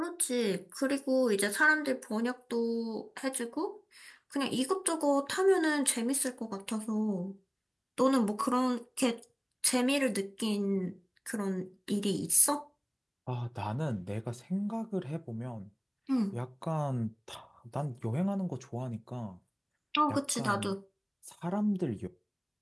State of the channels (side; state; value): both; identical; correlation 1.00